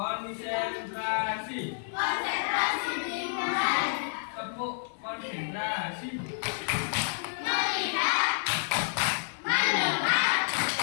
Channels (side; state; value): right; silent; digital silence